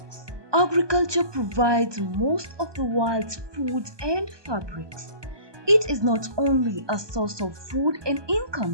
Agriculture provides most of the world's food and fabrics. It is not only a source of food and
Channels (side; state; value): left; late; 1.2 ms